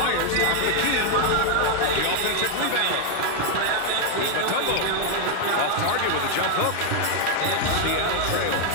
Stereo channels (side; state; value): both; different; correlation 0.00